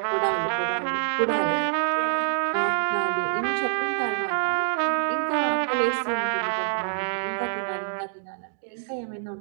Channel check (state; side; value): silent; left; digital silence